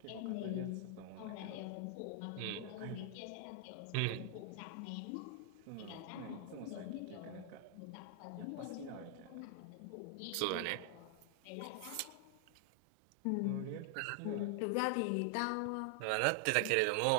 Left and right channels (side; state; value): both; different; correlation 0.00